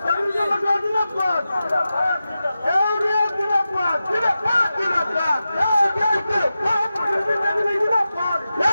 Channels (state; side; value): inverted; both; correlation -0.92